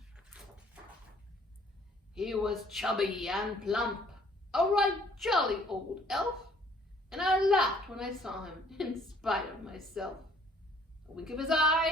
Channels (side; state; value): both; normal; correlation 0.59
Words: He was chubby and plump, a right jolly old elf, and I laughed when I saw him in spite of myself. A wink of his